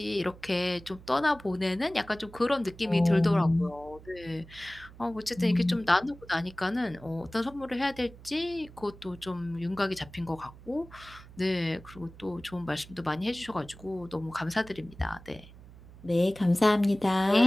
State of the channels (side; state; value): right; noise; hum, 20 dB below the sound